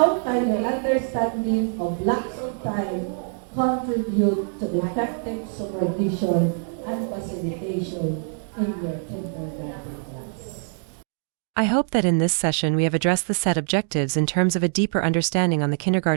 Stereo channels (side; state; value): left; silent; 58 dB below the other